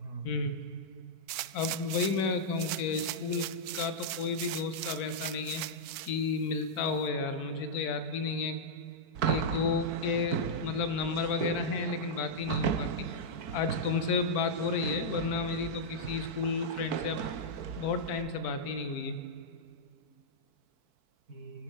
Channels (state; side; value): late; left; 4.5 ms